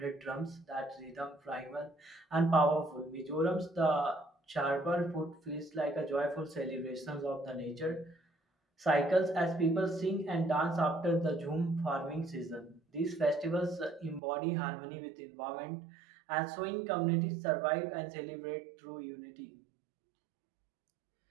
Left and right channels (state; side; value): drops out; left; at 14.2 s